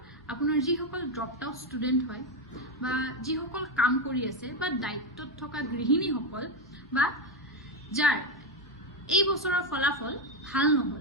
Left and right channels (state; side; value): normal; both; correlation 0.08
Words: আপোনাৰ যিসকল ড্ৰপড আউট ষ্টুডেণ্ট হয় বা যিসকল কাম কৰি আছে বা দায়িত্বত থকা গৃহিণীসকল বা যাৰ এই বছৰৰ ফলাফল ভাল